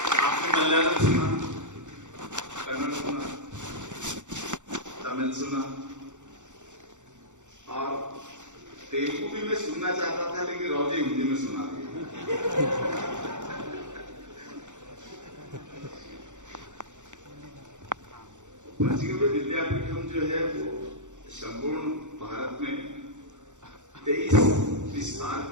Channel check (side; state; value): left; late; 0.85 ms